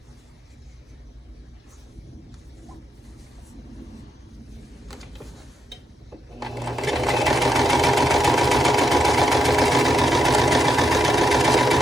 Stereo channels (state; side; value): normal; both; correlation 0.81